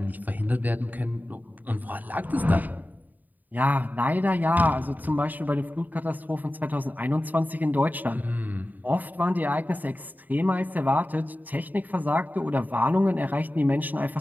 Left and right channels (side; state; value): left; late; 0.083 ms